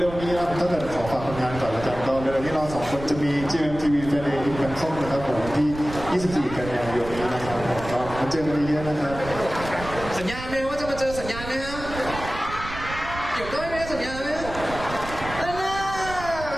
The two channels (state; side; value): noise; right; rumble, 11 dB below the sound